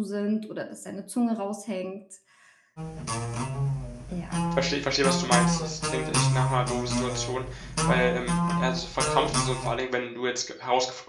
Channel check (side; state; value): both; identical; correlation 1.00